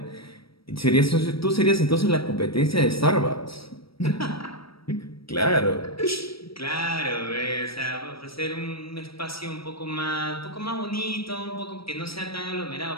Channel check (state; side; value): late; right; 0.75 ms